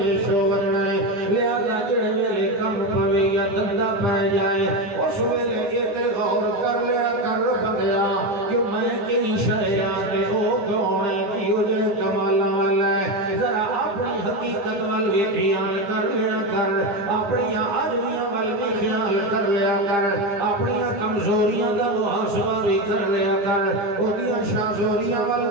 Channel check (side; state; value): left; late; 9.9 ms